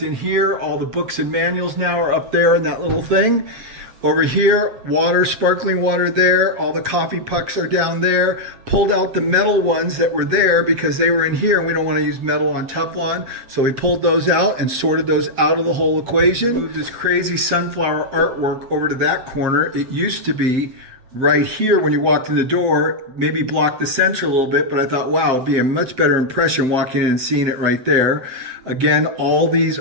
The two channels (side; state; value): left; late; 7.8 ms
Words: in here. All the books and manuals now are up there in that little thing. Over here, water, sparkling water there. All the coffee pucks are down there. Pulled out the metal ones that were there because they were in here and we don't want to use metal on Teflon. So we pulled those out and sorted those out of the whole equation. Moved this crazy sunflower artwork over to that corner. It used to be right here when you walked in the door, maybe blocked the center a little bit, but I thought, wow, it'd be a much better impression walking in and seeing it right there. Again, all these